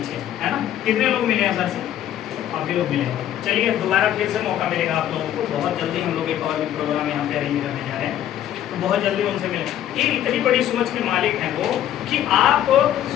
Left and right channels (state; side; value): quieter; right; 11.4 dB